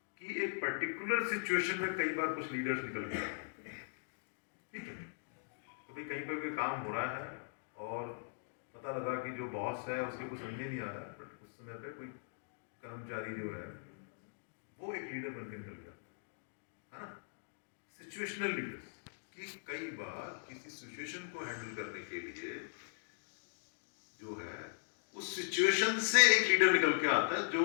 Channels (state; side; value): silent; right; digital silence